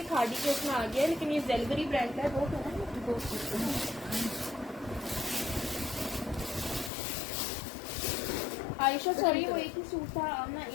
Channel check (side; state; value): right; drops out; at 6.9 s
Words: खादी के उसमें आ गया है, लेकिन ये जेलबरी ब्रांड का है। वो तो आयशा सॉरी, वो एक ही सूट था। आमना